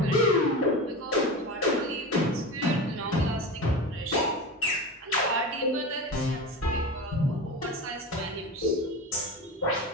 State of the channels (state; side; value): normal; both; correlation 0.26